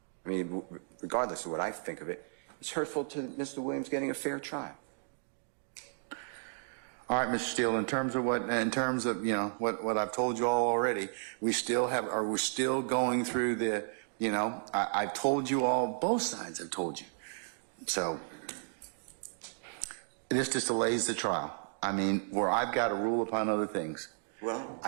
I mean, regardless of what I think of it, it's hurtful to Mr. Williams getting a fair trial. All right, Mr. Steele, in terms of what I've told you all already, we're still going through the, I've told you all, both sides have told you. So this just delays the trial. I mean, where I've got to rule upon other things. Well,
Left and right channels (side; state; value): left; silent; digital silence